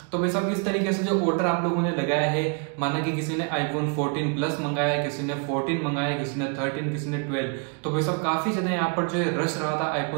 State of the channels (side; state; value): left; quieter; 37.0 dB